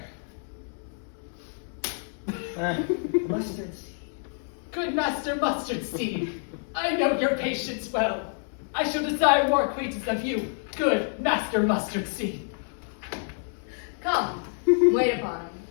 Mustard seed. Good Master Mustard Seed, I know your patience well. I shall desire more acquaintance of you. Good Master Mustard Seed. Come, wait upon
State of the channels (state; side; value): silent; right; 59 dB below the other